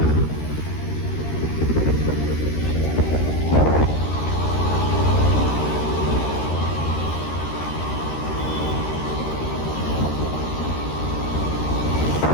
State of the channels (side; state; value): right; late; 13 ms